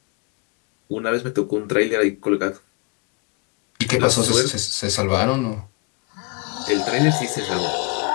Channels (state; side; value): quieter; right; 30.9 dB